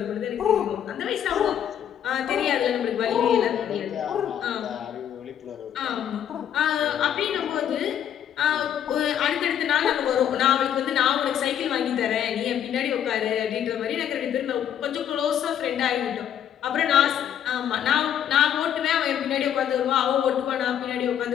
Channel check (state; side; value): quieter; right; 9.6 dB